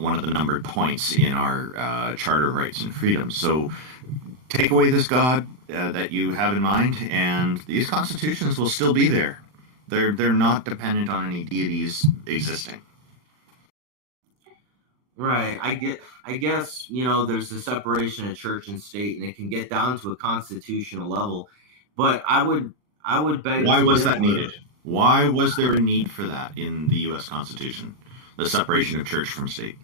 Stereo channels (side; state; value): left; late; 39 ms